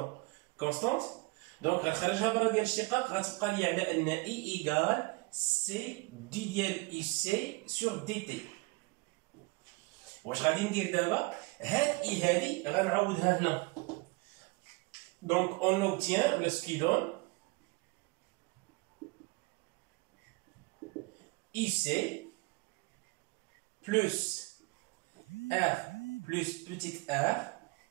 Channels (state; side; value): quieter; left; 26.1 dB